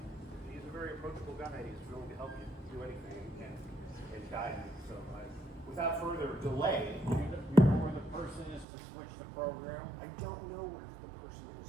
he's a very approachable guy, and he's willing to help you do anything and guide you. So without further delay. You know where the person is to switch the program? I don't know where the person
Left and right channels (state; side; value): drops out; left; at 8.7 s